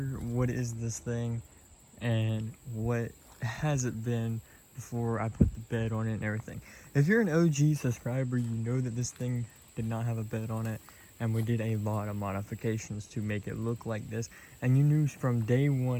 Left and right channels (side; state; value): both; identical; correlation 1.00